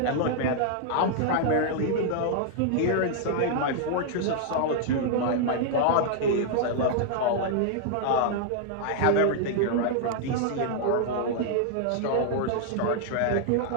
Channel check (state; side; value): different; both; correlation -0.01